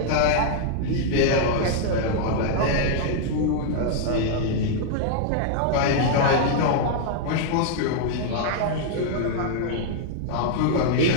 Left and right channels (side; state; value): both; different; correlation -0.01